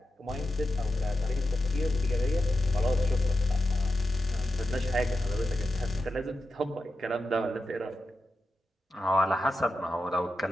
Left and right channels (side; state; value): both; normal; correlation 0.89